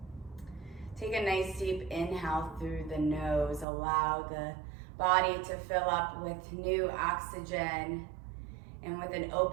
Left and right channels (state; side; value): drops out; left; at 3.7 s